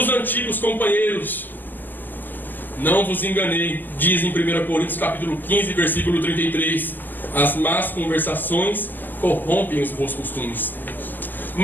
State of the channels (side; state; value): right; late; 0.087 ms